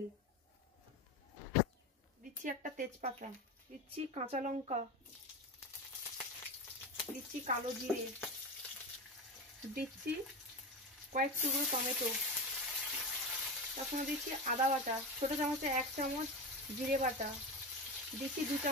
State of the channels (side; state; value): both; normal; correlation 0.21